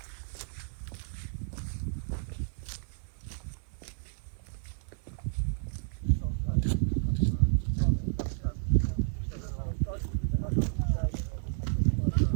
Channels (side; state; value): left; silent; 57 dB below the other